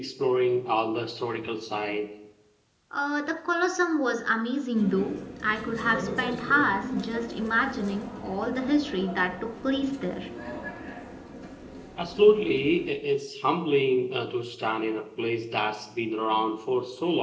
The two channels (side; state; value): both; identical; correlation 1.00